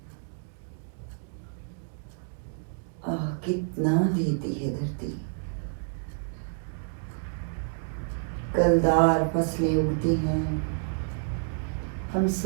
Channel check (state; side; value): silent; left; digital silence